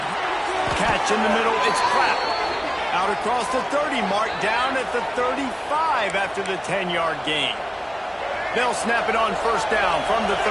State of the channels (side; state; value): both; identical; correlation 1.00